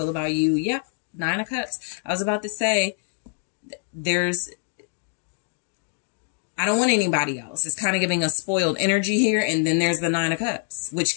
about you. Yep. Nine of Cups. I was about to say, I don't want anybody else. It's kind of giving a spoiled energy here. And then there's the Nine of Cups,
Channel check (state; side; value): silent; right; 62 dB below the other